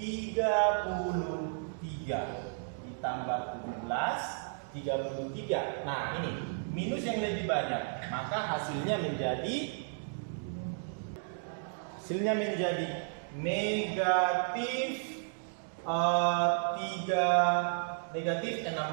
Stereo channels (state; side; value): silent; left; digital silence